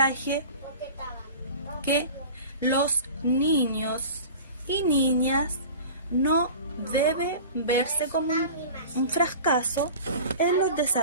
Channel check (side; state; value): both; inverted; correlation -0.38